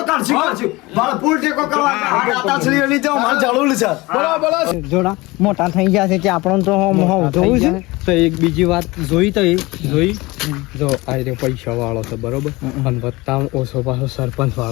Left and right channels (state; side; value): quieter; right; 22.1 dB